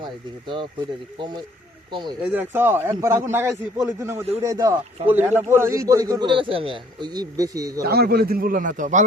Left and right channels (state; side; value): normal; both; correlation 0.59